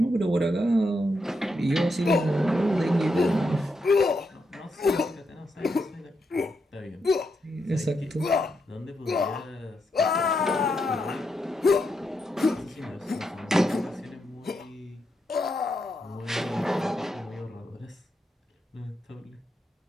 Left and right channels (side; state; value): both; normal; correlation 0.82